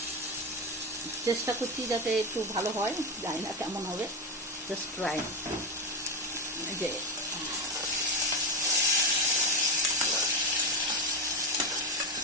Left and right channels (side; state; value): both; normal; correlation 0.14